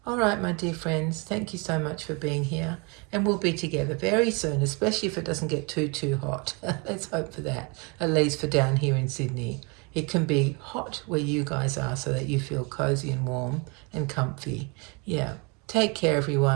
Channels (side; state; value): left; quieter; 30.9 dB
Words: All right, my dear friends, thank you so much for being here. And we'll be together very soon, especially if it doesn't get too hot. Let's hope for that, at least for down here in Sydney. It can be hot where you guys are so that you feel cozy and warm and comfy. Yeah. Take care,